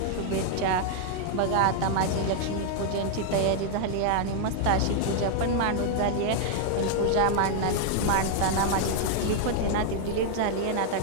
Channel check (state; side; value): different; both; correlation 0.00